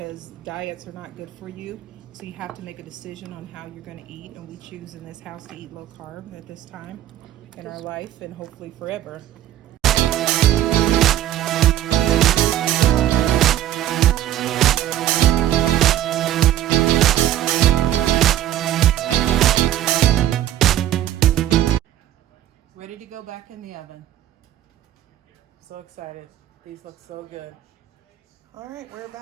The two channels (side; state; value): left; quieter; 12.4 dB